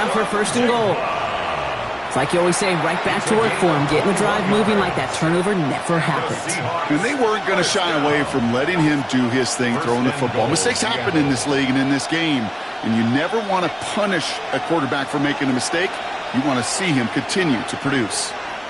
for first and goal. It's like you always say, right back to work for him. Getting the drive moving like that turnover never happened. And they weren't going to shy away from letting him do his thing, throwing the football. Mistakes happen in this league and in this game. And you never want to punish a quarterback for making a mistake. You want to see him continue to produce.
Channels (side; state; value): both; identical; correlation 1.00